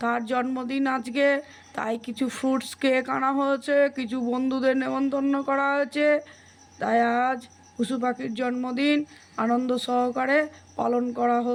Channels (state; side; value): identical; both; correlation 1.00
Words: তার জন্মদিন আজকে। তাই কিছু ফ্রুটস কেক আনা হয়েছে, কিছু বন্ধুদের নেমন্তন্ন করা হয়েছে। তাই আজ পশু পাখির জন্মদিন আনন্দ সহকারে পালন করা